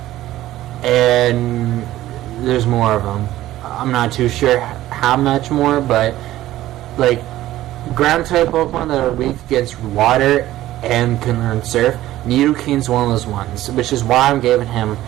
and there's more of them. I'm not too sure how much more, but like ground-type Pokemon that are weak against water and can learn Surf, Nidoking's one of those ones, which is why I'm giving him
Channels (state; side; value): quieter; left; 14.8 dB